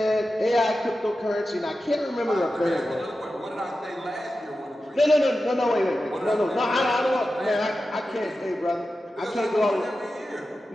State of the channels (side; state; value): both; normal; correlation 0.92